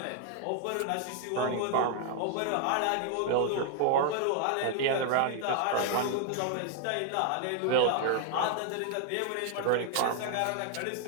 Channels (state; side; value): different; both; correlation 0.00